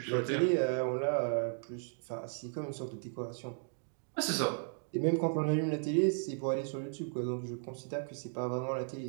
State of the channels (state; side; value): silent; left; digital silence